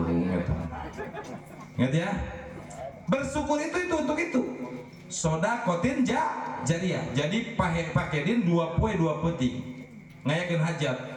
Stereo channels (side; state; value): both; identical; correlation 1.00